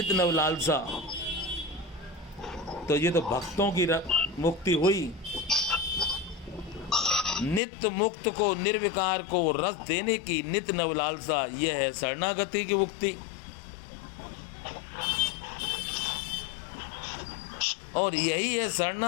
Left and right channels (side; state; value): right; drops out; at 7.6 s